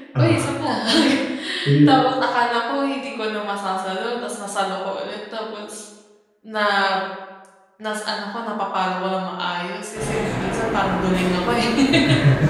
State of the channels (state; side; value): identical; both; correlation 1.00